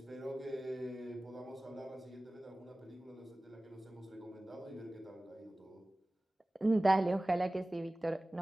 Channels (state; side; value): normal; both; correlation 0.98